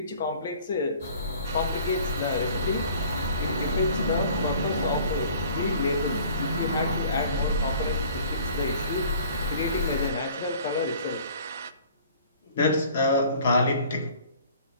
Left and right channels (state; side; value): inverted; both; correlation -0.51